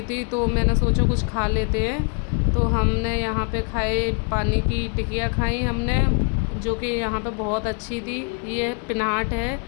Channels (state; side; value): quieter; right; 38.1 dB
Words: थी तो मैंने सोचा कुछ खा लेते हैं। तो हमने यहाँ पे खाए, पानी की टिकिया खाई हमने, जो कि यहाँ पे बहुत अच्छी थी। ये पिनाट है,